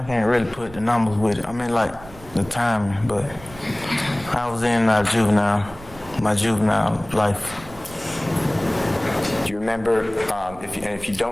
can't really put the numbers with it. I mean, like the timing, but I was in my juvenile life. Do you remember, if you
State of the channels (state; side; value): noise; right; rumble, 19 dB below the sound